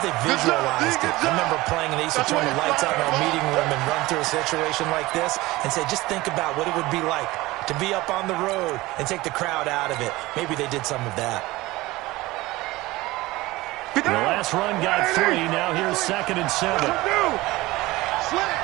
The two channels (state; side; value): quieter; left; 19.6 dB